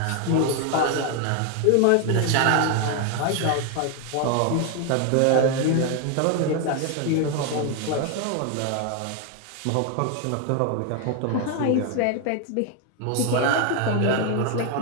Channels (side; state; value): both; different; correlation 0.01